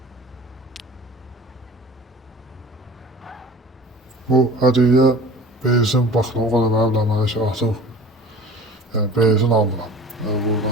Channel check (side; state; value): both; normal; correlation 0.41